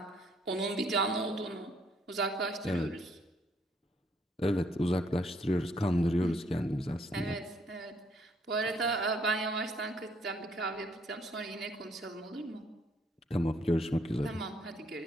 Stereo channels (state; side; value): normal; both; correlation 0.68